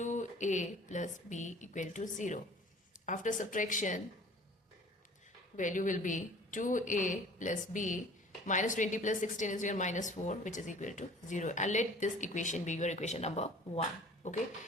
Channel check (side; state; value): both; normal; correlation 0.47